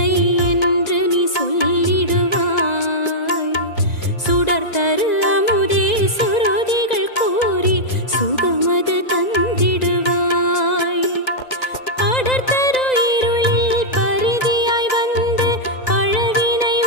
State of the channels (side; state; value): right; late; 1.9 ms